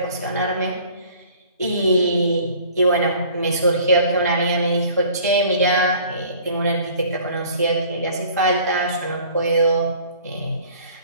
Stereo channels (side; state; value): both; inverted; correlation -0.51